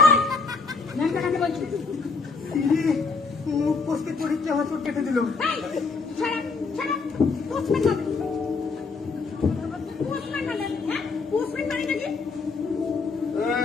ন্যাংটা কাকে বলছি? ইরে, মুখ পোস্টে পরীক্ষা হাসর কেটে দিল।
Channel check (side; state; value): right; quieter; 4.4 dB